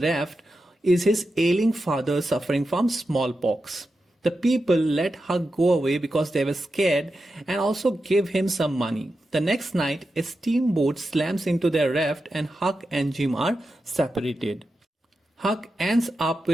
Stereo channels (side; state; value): both; normal; correlation 0.90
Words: is his ailing father suffering from smallpox. The people let Huck go away because they were scared and also give him some money. The next night, a steamboat slams into their raft and Huck and Jim are separated. Huck ends up